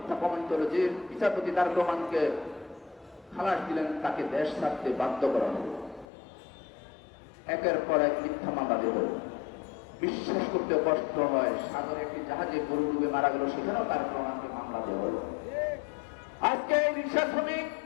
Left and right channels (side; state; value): right; drops out; at 6.1 s